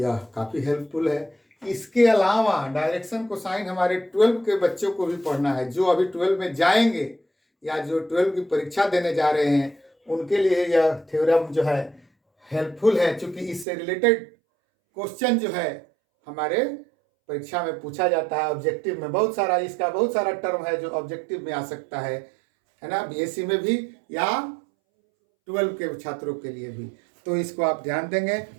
काफ़ी हेल्पफुल है। इसके अलावा डायरेक्शन कोसाइन हमारे 12 के बच्चों को भी पढ़ना है, जो अभी 12 में जाएंगे या जो 12 की परीक्षा देने जा रहे हैं, उनके लिए यह थ्योरम जो है हेल्पफुल है, क्योंकि इससे रिलेटेड क्वेश्चन जो है हमारे परीक्षा में पूछा जाता है। ऑब्जेक्टिव में बहुत सारा, इसका बहुत सारा टर्म है जो ऑब्जेक्टिव में आ सकता है ना, BSc में भी या 12 के छात्रों के लिए भी। तो इसको आप ध्यान देंगे।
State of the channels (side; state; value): left; drops out; at 13.7 s